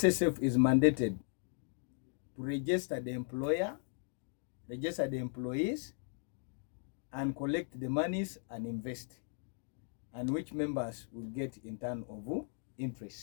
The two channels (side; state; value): right; silent; 53 dB below the other